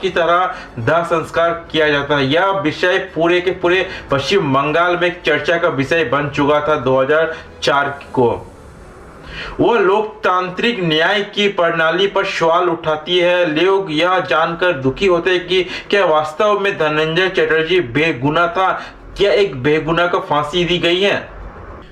की तरह दाह संस्कार किया जाता है। यह विषय पूरे के पूरे पश्चिम बंगाल में एक चर्चा का विषय बन चुका था 2004 को। वह लोकतांत्रिक न्याय की प्रणाली पर सवाल उठाती है। लोग यह जानकर दुखी होते हैं कि क्या वास्तव में धनंजय चटर्जी बेगुनाह था, क्या एक बेगुनाह को फांसी दी गई है।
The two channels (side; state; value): both; identical; correlation 1.00